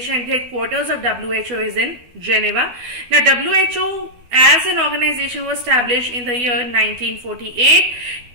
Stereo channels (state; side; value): late; left; 12 ms